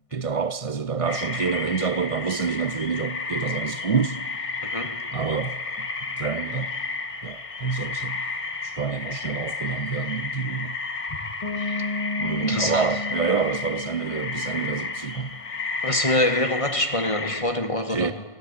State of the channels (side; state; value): right; late; 1.5 ms